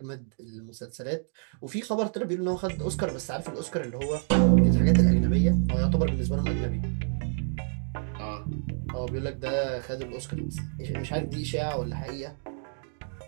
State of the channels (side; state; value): left; silent; 59 dB below the other